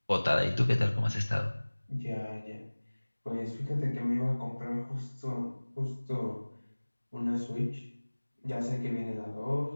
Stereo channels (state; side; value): inverted; both; correlation -1.00